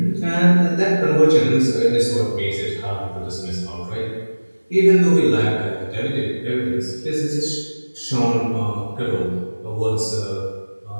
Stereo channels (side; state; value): both; inverted; correlation -1.00